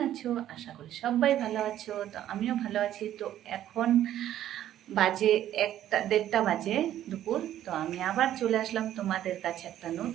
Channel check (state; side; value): quieter; left; 12.0 dB